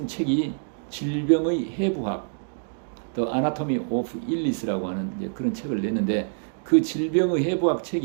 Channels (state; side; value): silent; left; digital silence